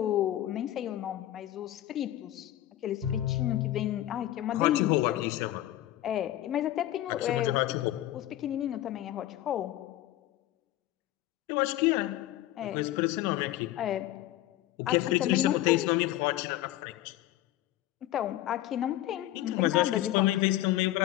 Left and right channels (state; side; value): quieter; right; 14.3 dB